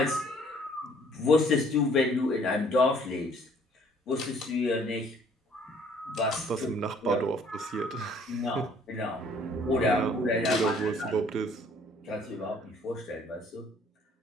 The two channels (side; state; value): both; normal; correlation 0.59